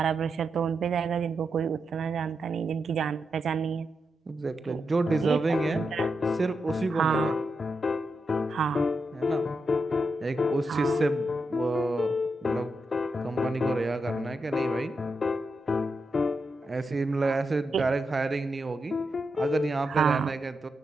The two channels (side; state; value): both; normal; correlation 0.85